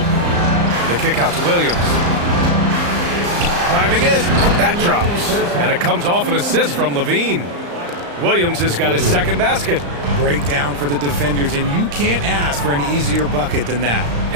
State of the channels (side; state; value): left; late; 35 ms